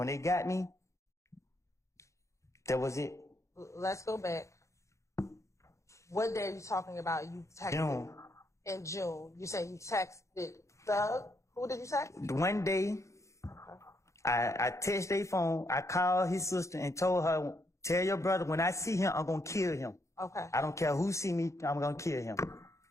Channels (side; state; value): right; late; 0.14 ms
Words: they got me, that was it. Let's go back. What day are you talking about? You texted June. in June. You say you texted Thug. Who did you text? One day, I texted their phone. I called his sister and told her, tell your brother when I see him, I'm gonna kill him. Okay. I don't care who see me, I'm gonna kill him.